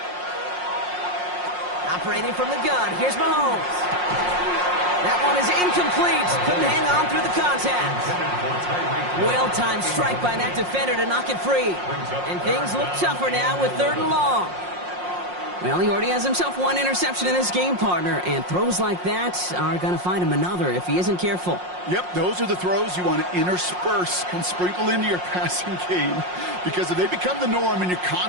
Operating from the gun, here's Mahomes. That one is incomplete. Couldn't hang on through the contact. Well-timed strike by that defender to knock it free. And things look tougher now with 3rd and long. Well, he already has himself 1 interception in this game, partner, and throws like that are going to find him another if he isn't careful. Yep, those are the throws you want to intersperse and sprinkle into your passing game. Because if they become the norm and you're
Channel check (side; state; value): left; late; 5.6 ms